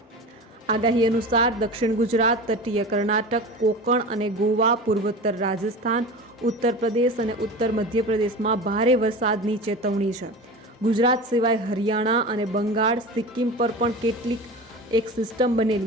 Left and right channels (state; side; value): normal; both; correlation 0.32